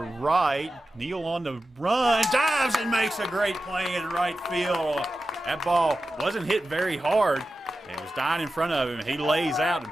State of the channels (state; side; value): normal; both; correlation 0.92